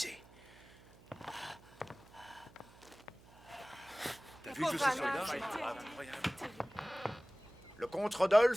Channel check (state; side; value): noise; right; hum, 24 dB below the sound